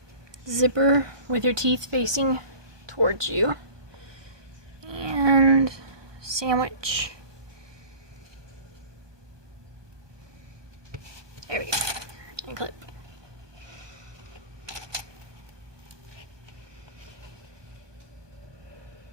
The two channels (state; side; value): late; left; 1.2 ms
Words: zipper with your teeth facing towards you. And sandwich. There we go. And clip.